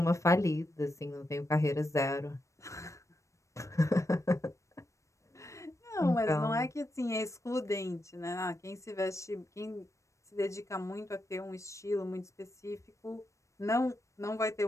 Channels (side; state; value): right; late; 0.15 ms